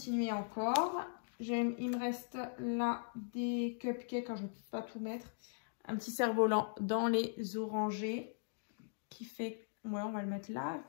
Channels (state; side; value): silent; right; digital silence